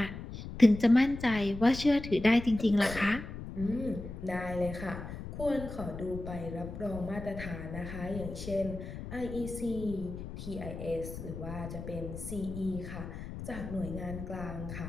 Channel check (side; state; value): left; noise; rumble, 9 dB below the sound